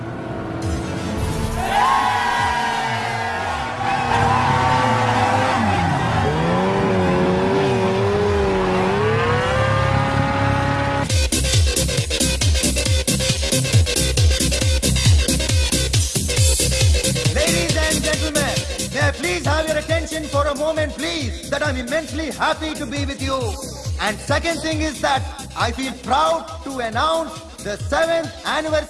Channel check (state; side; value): identical; both; correlation 1.00